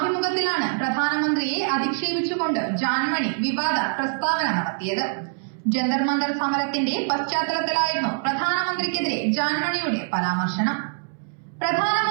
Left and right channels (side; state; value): left; silent; 63 dB below the other